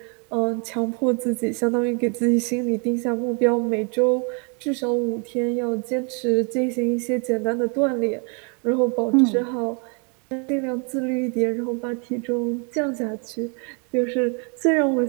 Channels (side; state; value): left; quieter; 37.1 dB